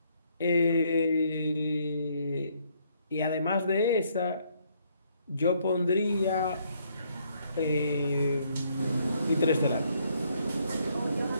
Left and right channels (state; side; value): inverted; both; correlation -0.69